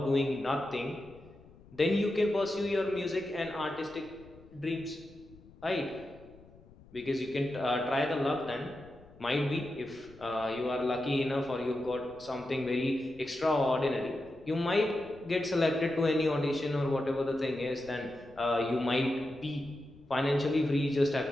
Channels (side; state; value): left; noise; rumble, 23 dB below the sound